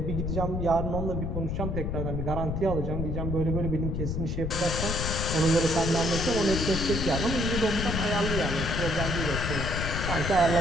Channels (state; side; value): noise; left; rumble, 2 dB below the sound